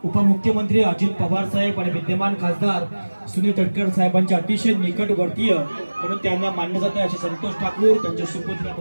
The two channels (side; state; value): both; inverted; correlation -1.00